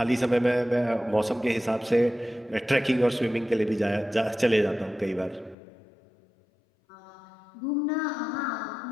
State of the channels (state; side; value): drops out; right; at 5.6 s